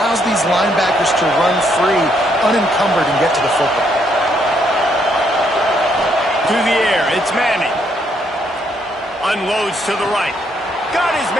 these linebackers to run free, unencumbered, and get to the football. To the air, it's Manning. Unloads to the right. Got his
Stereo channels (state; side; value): normal; both; correlation 0.72